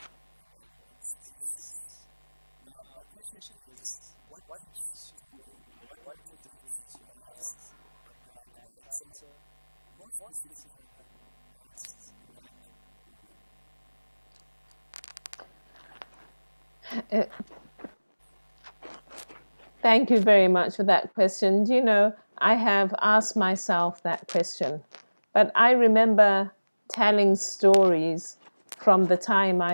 in spaces. Now, my question is, what keeps you going, or what motivates you as a black writer, more specifically as a black woman? Thank you very much for that question. You know, I have asked myself that question, but I remember telling stories from the time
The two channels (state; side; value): inverted; both; correlation -1.00